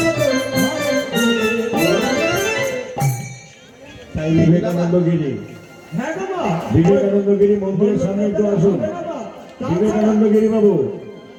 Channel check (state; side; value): identical; both; correlation 1.00